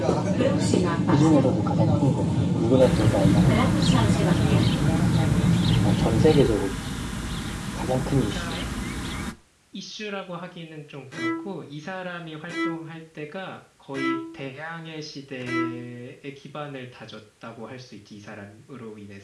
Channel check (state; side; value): identical; both; correlation 1.00